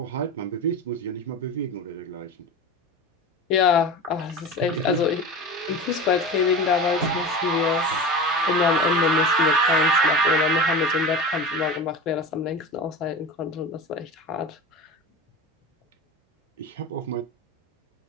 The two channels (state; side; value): normal; both; correlation 0.29